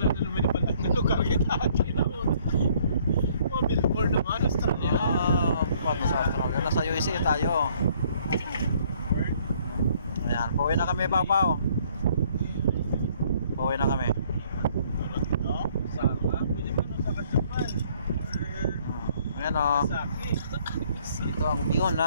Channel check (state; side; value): inverted; both; correlation -0.62